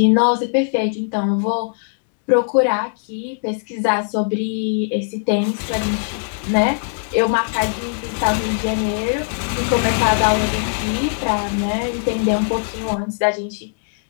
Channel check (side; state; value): right; silent; digital silence